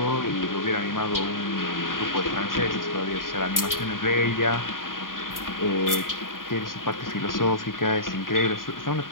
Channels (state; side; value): late; right; 0.90 ms